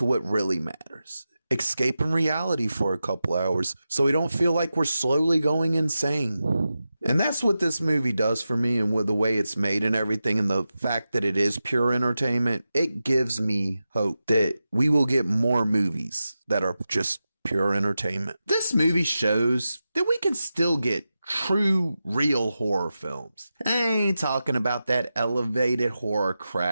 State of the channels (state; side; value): inverted; both; correlation -0.92